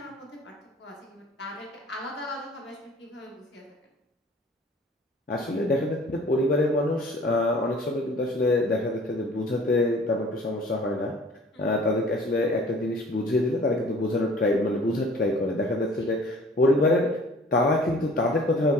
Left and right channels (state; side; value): normal; both; correlation 0.50